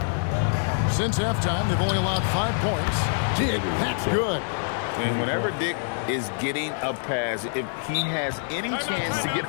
Since halftime, they've only allowed 5 points. Dick, that's good. And whenever Dick is getting a pass, if he has any chance to get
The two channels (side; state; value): right; silent; digital silence